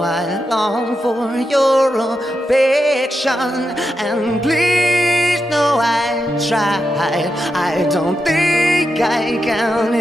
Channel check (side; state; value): both; normal; correlation 0.87